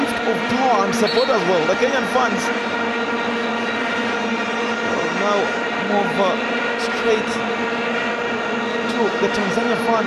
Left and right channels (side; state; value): both; identical; correlation 1.00